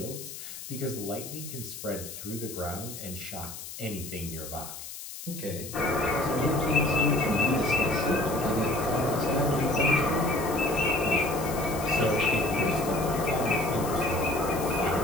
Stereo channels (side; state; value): left; noise; hiss, 11 dB below the sound